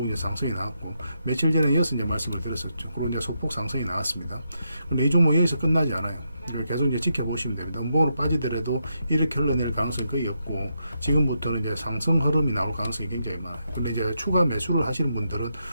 이제 상승이 나왔고, 며칠 전에 이어서 이제 말씀을 드렸었죠. 그리고 이제 소폭 상승이 나왔습니다. 근데 이 종목 여기서 끝나지 않아요. 계속 이제 지켜보시면 됩니다. 음봉으로 빠지더라도 이렇게 흘러낼 가능성이 거의 없고, 지금부터는 이제 상승 흐름이 나올 가능성이 굉장히 많아요. 근데 이제 추가 매수를 하시는 분들은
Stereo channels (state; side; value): inverted; both; correlation -0.82